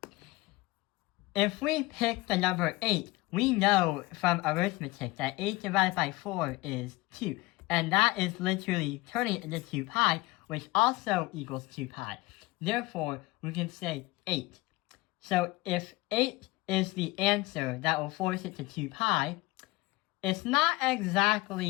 If we pick the number 8, we know from arithmetic that 8 divided by 4 is 2. And that is literally turning it into 2 pi, which also equals 2 pi. Therefore, we can say 8. So if 8 is the answer that will force it to 2 pi, it's not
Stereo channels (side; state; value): right; quieter; 20.9 dB